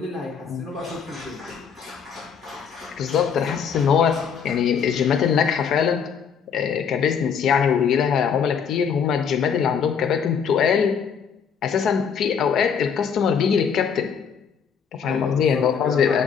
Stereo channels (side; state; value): right; quieter; 6.9 dB